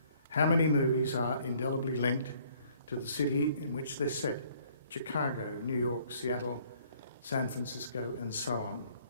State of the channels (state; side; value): inverted; both; correlation -0.61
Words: How many movies are indelibly linked to the city in which they're set? Chicago, New York, Seattle, San Francisco, and so on.